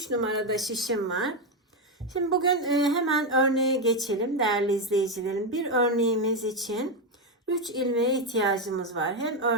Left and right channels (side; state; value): both; normal; correlation 0.07